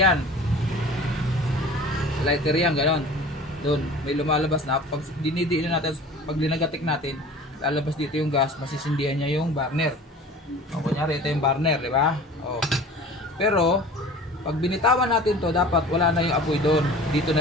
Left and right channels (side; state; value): both; normal; correlation 0.42